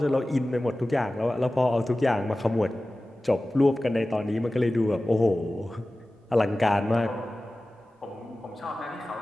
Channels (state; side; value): normal; both; correlation 0.96